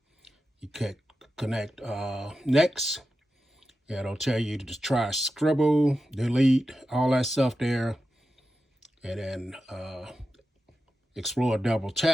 You can connect next. It'll tell you to try scribble, delete, all that stuff there. And then explore double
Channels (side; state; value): both; normal; correlation 0.91